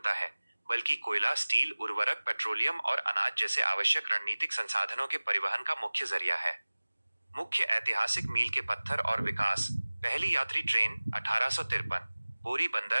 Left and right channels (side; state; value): both; inverted; correlation -1.00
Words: है, बल्कि कोयला, स्टील, उर्वरक, पेट्रोलियम और अनाज जैसे आवश्यक रणनीतिक संसाधनों के परिवहन का मुख्य जरिया है। मुख्य ऐतिहासिक मील के पत्थर और विकास। पहली यात्री ट्रेन 1853। बोरी